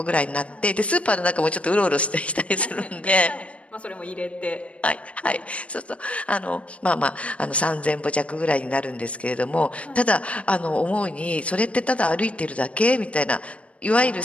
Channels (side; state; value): right; late; 0.063 ms